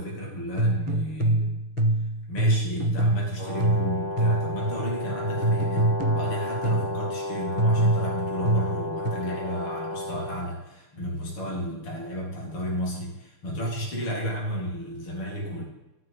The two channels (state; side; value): late; right; 6.7 ms